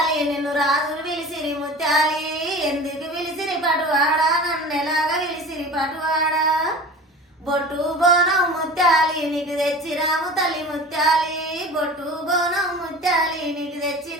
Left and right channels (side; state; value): both; normal; correlation 0.37